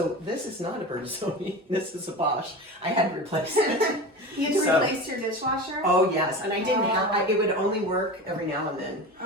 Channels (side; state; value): both; normal; correlation 0.30